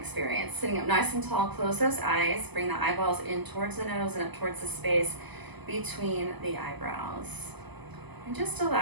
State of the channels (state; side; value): late; left; 1.0 ms